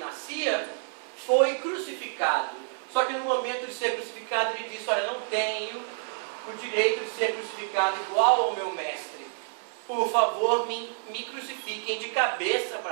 foi crucificado. Só que no momento de ser crucificado ele disse: olha, não tenho o direito de ser crucificado igual ao meu mestre. Por favor, me crucifiquem de cabeça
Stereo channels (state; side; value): silent; left; 59 dB below the other